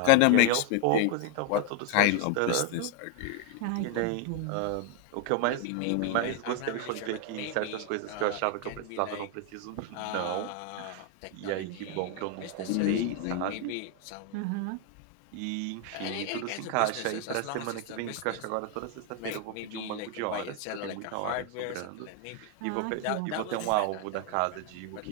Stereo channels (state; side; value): different; both; correlation 0.00